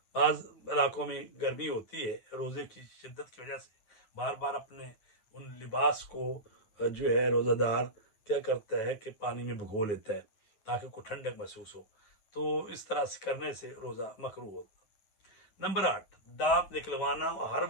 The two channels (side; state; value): right; late; 9.2 ms